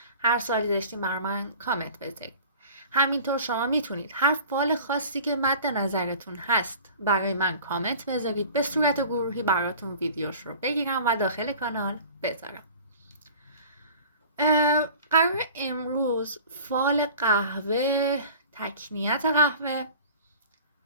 هر سوالی داشتین برای من کامنت بذارید. همینطور شما میتونید هر فال خاصی که مد نظرتون هست برای من کامنت بذارید، به صورت گروهی براتون ویدیوش رو بگیرم و داخل کانال بذارم. قرار امروز فال قهوه، تکنیت قهوه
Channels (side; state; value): both; inverted; correlation -0.42